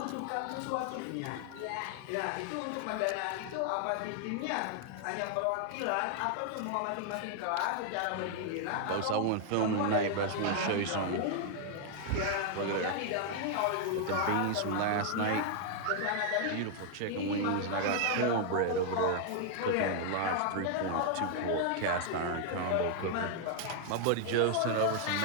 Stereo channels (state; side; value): different; both; correlation 0.00